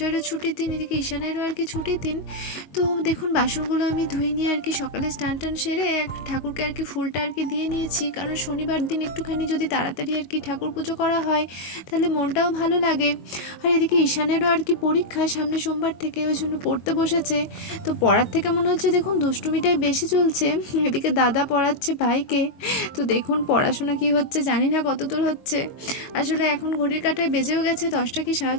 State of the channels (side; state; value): right; late; 22 ms